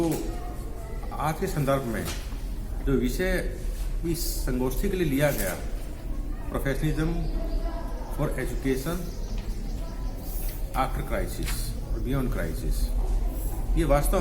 आज के संदर्भ में जो विषय इस संगोष्ठी के लिए लिया गया, professionalism for education after crisis और बियॉन्ड क्राइसिस, ये वास्तव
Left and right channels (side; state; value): both; identical; correlation 1.00